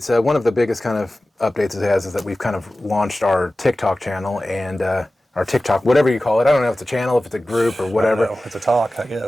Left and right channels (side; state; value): both; normal; correlation 0.96